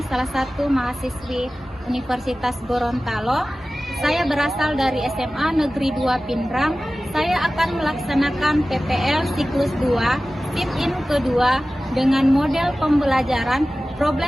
salah satu mahasiswi Universitas Gorontalo. Saya berasal dari SMA Negeri 2 Pinrang. Saya akan melaksanakan PPL siklus 2, Fit-in kedua dengan model pembelajaran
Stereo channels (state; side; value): normal; both; correlation 0.96